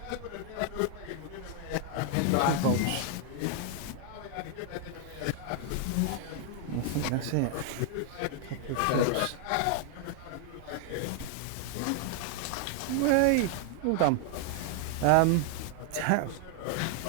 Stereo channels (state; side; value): different; both; correlation 0.00